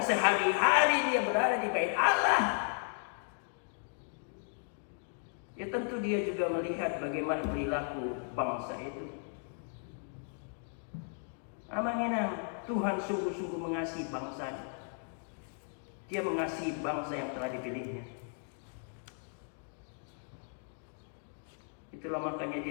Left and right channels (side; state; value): right; silent; 54 dB below the other